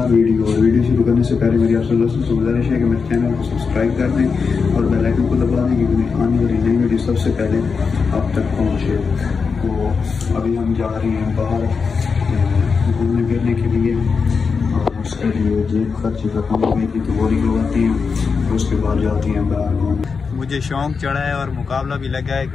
वीडियो। और वीडियो शुरू करने से पहले मेरी आपसे दोस्तों से गुजारिश है कि मेरे चैनल को सब्सक्राइब कर दें और बेल आइकन को दबा दें क्योंकि मेरी आने वाली नई वीडियो सबसे पहले आप तक पहुँचे। तो अभी हम जा रहे हैं बाहर घूमने फिरने के लिए और उसके लिए जेब खर्च रकम हुई थी तो वो निकलवाती हैं, उसके बाद जाती हैं बाहर घूमने। मुझे शौक चढ़ा है और मुकाबला भी लगा है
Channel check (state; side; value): quieter; right; 5.2 dB